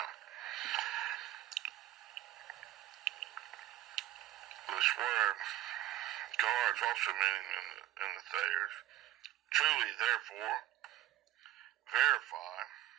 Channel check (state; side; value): quieter; left; 13.7 dB